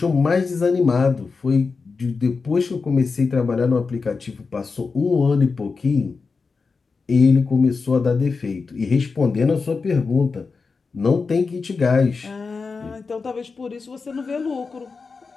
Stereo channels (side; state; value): right; quieter; 4.6 dB